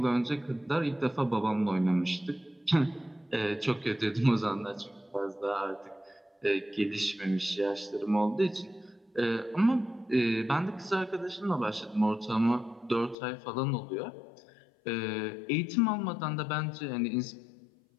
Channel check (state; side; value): drops out; right; at 13.2 s